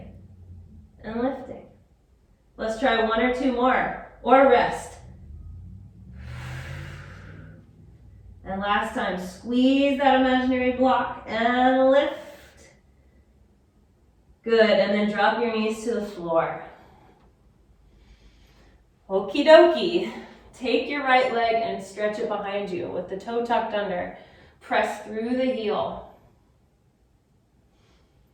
and lifting. Let's try one or two more, or rest. And last time, squeeze that imaginary block and lift. Good, and then drop your knees to the floor. Okie dokie. Take your right leg and stretch it behind you with the toe tucked under. Press through the heel.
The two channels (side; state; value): both; identical; correlation 1.00